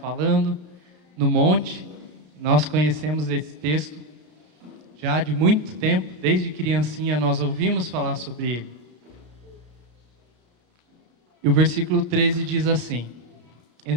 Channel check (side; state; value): left; late; 34 ms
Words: no monte. Nós conhecemos esse texto já de muito tempo, desde criancinha nós ouvimos falar sobre ele. E o versículo 13 diz assim: